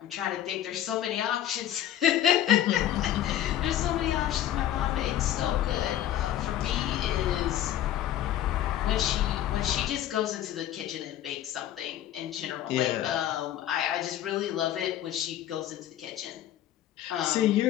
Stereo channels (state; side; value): quieter; right; 12.0 dB